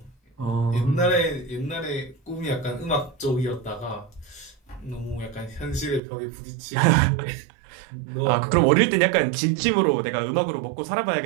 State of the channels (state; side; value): drops out; left; at 6.0 s